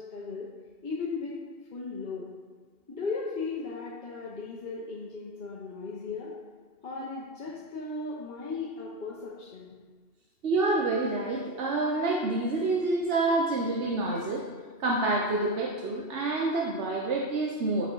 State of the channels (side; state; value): left; late; 2.8 ms